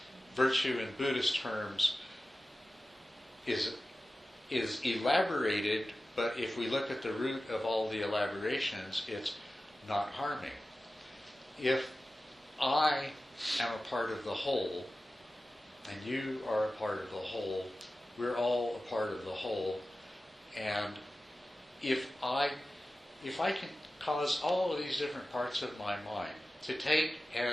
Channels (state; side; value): normal; both; correlation 0.95